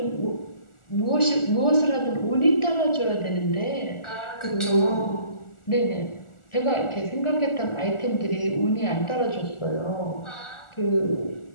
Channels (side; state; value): right; late; 1.4 ms